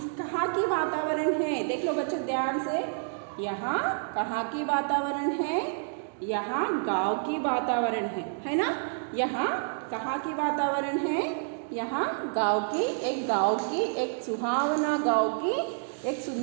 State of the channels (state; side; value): silent; left; digital silence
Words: कहाँ की वातावरण है, देख लो बच्चों ध्यान से। यहाँ कहाँ की वातावरण है, यहाँ गांव की वातावरण है ना। यहाँ कहाँ की वातावरण है, यहाँ गांव की, एक सुहावना गांव की, एक